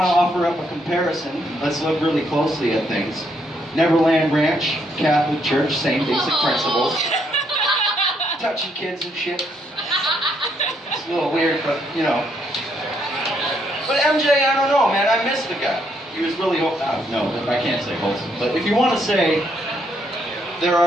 to offer up a comparison, let's look really closely at things. Neverland Ranch, Catholic Church, same basic principles. Touching kids and shit. It's a little weird, but, you know. But MJ, I don't know, man, I miss the guy. He was really, no, I can't say wholesome. But if you want to say, there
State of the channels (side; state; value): both; normal; correlation 0.73